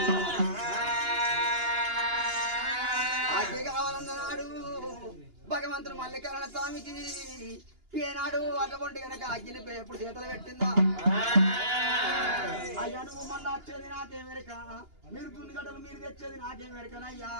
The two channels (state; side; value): late; left; 2.9 ms